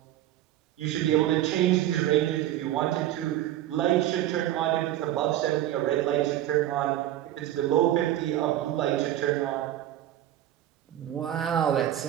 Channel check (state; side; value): quieter; left; 13.1 dB